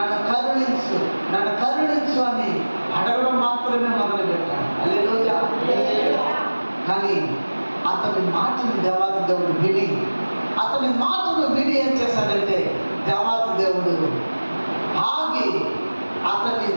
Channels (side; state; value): both; inverted; correlation -1.00